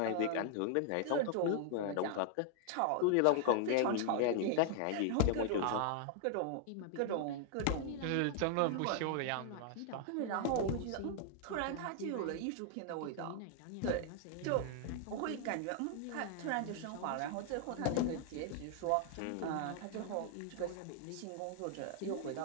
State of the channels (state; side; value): different; both; correlation -0.01